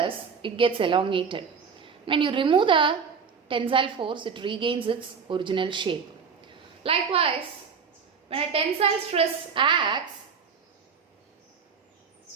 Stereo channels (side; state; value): left; quieter; 5.9 dB